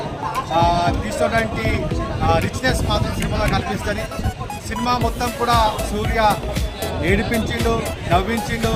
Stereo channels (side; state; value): both; identical; correlation 1.00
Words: తీసుకున్నటువంటి రిచ్నెస్ మాత్రం సినిమాలో కనిపిస్తుంది. సినిమా మొత్తం కూడా సూర్య ఏడిపించిండు, నవ్వించిండు,